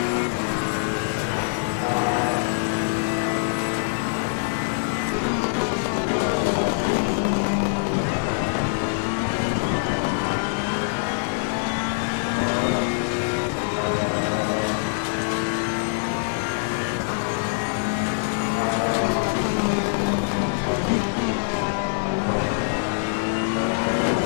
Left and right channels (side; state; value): right; silent; 63 dB below the other